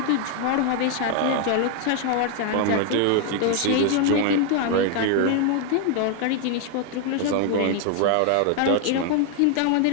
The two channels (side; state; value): both; different; correlation 0.00